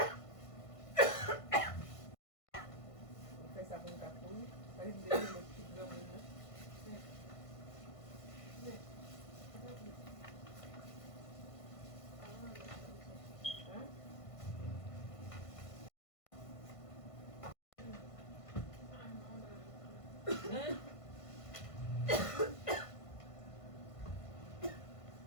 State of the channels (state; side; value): late; right; 1.5 ms